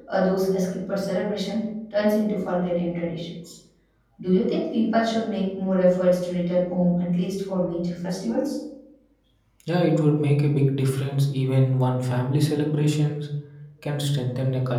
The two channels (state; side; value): identical; both; correlation 1.00